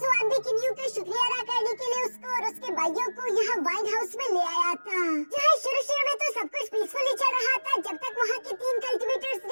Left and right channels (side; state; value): both; inverted; correlation -1.00